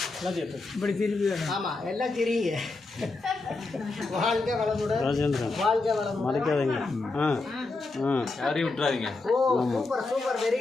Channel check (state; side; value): quieter; right; 3.5 dB